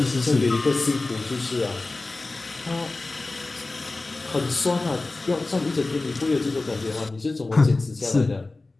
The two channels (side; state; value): right; quieter; 3.2 dB